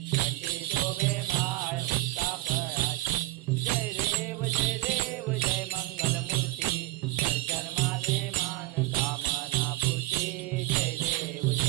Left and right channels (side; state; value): left; quieter; 19.3 dB